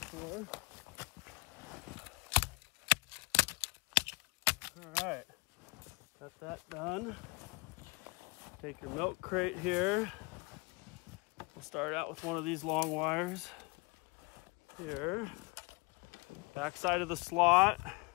All right. Got that done. Take your milk crate here. We'll start out with one of these long wires here. Back side of the slot.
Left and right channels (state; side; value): quieter; right; 28.0 dB